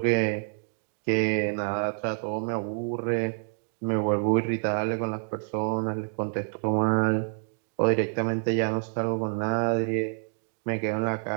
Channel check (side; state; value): left; silent; digital silence